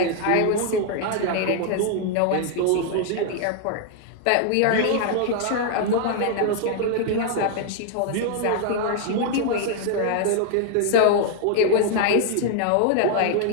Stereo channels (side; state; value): both; different; correlation 0.00